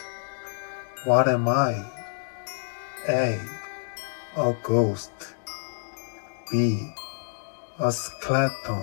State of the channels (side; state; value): right; silent; digital silence